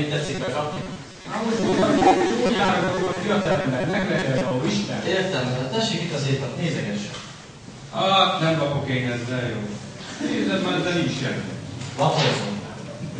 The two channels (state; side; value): identical; both; correlation 1.00